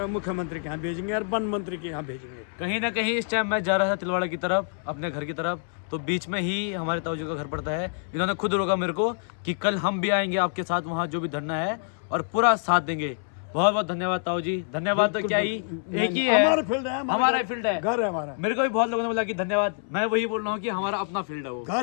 मुख्यमंत्री के यहाँ भेजेंगे और वन मंत्री के यहाँ भेजेंगे। कहीं ना कहीं इस टाइम मैं जा रहा था तिलवाड़ा की तरफ, अपने घर की तरफ, तो बीच में ही हमारे ताऊ जी का घर पड़ता है। इन्होंने खुद रोका मेरे को कि कल हम भी आएंगे आपके साथ, वहाँ जो भी धरना है और पूरा साथ देंगे। बहुत बहुत धन्यवाद ताऊ जी। धन्यवाद तो क्या ही, एक ही है, हमारा फील्ड है, हमारा फील्ड है, घर है हमारा। मेरे को भी बहुत लोगों ने बोला कि धन्यवाद, मैं वही बोल रहा हूँ कि हमारा अपना फील्ड है, वो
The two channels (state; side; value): silent; right; 61 dB below the other